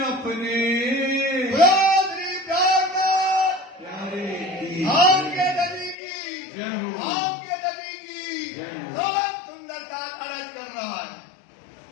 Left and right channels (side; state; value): right; drops out; at 6.0 s